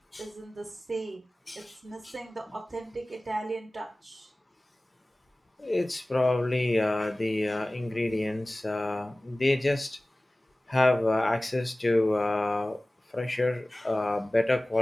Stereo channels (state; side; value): normal; both; correlation 0.98